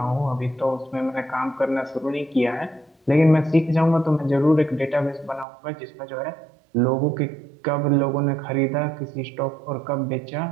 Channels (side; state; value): left; drops out; at 5.5 s